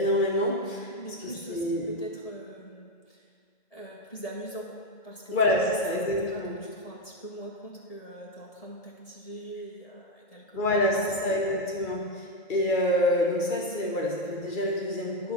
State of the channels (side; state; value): right; late; 2.3 ms